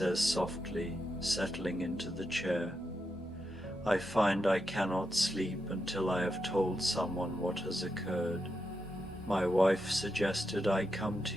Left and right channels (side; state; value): both; normal; correlation 0.86